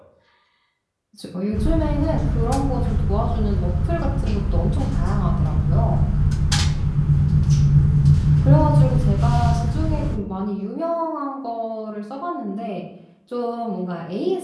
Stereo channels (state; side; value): identical; both; correlation 1.00